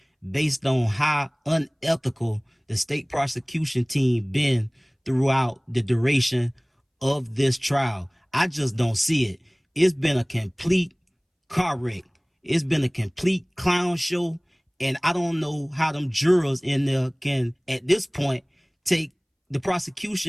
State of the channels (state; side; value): identical; both; correlation 1.00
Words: based on how unethical the state prosecution team been throughout the duration of this trial. I just don't see it. It's been a complete car wreck. It's been a complete clown show. And I don't know how them jurors in there can, at this point, take the